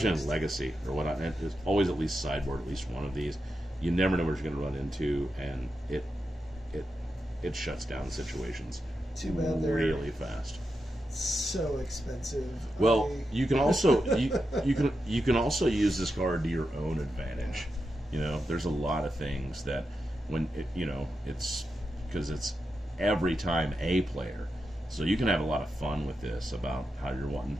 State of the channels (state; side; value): normal; both; correlation 0.88